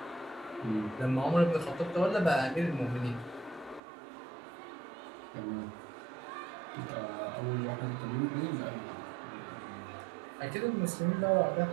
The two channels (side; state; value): left; drops out; at 3.8 s